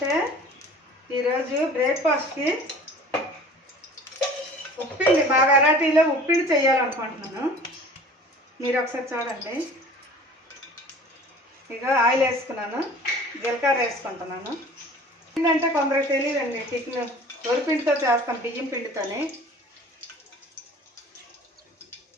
ఈరోజు బ్రేక్ఫాస్ట్కి ఉప్పిండి, మా వెరైటీలో ఉప్పిండి చేయాలనుకుంటున్నాను. మీరు ఒకసారి చూడండి. ఇక ఆయిల్ వేసుకున్నాను, జీలకర్ర వేసుకుంటున్నాను. ఏంటంటే కొందరికి తెలియదండి, టిఫిన్ వరిపిండితో చేస్తాం, బియ్యం పిండితోనే.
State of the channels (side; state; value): both; normal; correlation 0.45